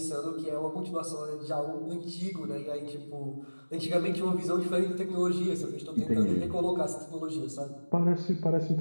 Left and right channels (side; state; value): both; inverted; correlation -1.00